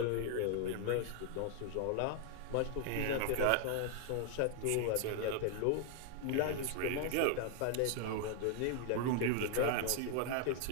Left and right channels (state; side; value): different; both; correlation 0.00